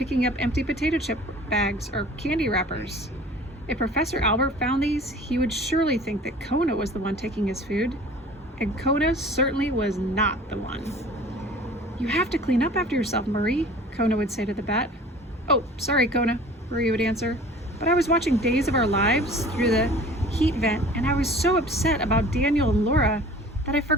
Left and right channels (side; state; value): both; normal; correlation 0.45